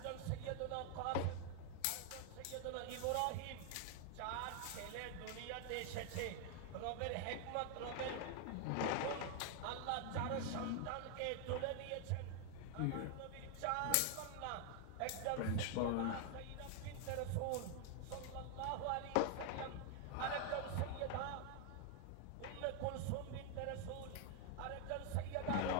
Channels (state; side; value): different; both; correlation 0.00